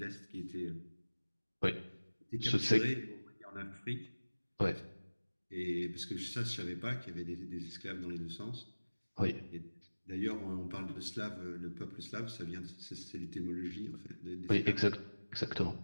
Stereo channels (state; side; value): inverted; both; correlation -1.00